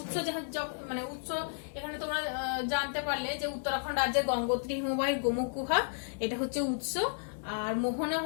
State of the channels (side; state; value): right; silent; digital silence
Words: মানে উৎস এখানে তোমরা জানতে পারলে যে উত্তরাখণ্ড রাজ্যের গঙ্গোত্রী হিমবাহের গোমুখ গুহা, এটা হচ্ছে উৎস, আর মোহনা